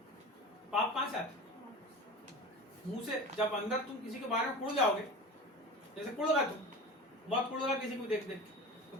पाप कहाँ से आता है? मुंह से। जब अंदर तुम किसी के बारे में कुड़ जाओगे, जैसे कुड़ गए तुम, बहुत कुड़ गया किसी को देख देख, तो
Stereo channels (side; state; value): both; normal; correlation 0.33